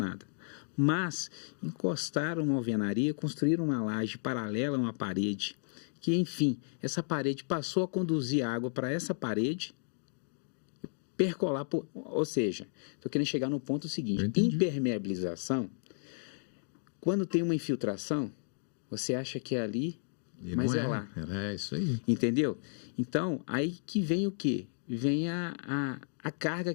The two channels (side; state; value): right; silent; digital silence